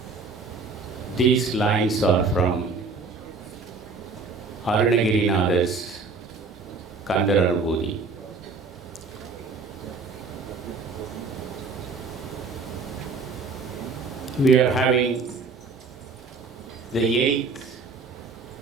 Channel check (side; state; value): left; quieter; 4.2 dB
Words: These lines are from Arunagirinath's Kandaranubhuti. We are having the 8th